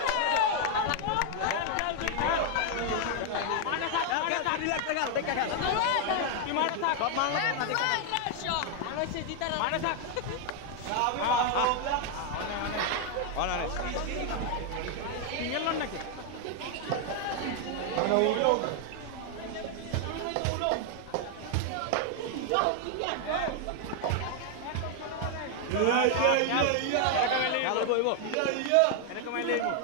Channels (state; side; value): different; both; correlation 0.00